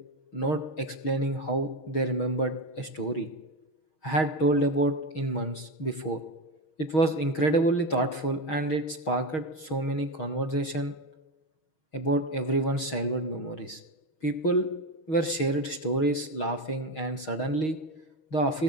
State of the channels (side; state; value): right; late; 6.4 ms